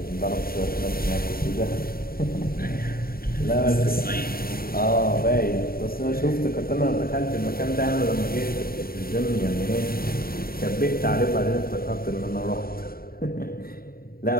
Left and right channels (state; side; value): late; right; 0.43 ms